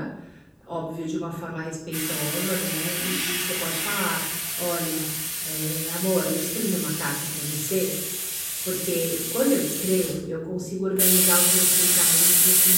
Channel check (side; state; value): both; identical; correlation 1.00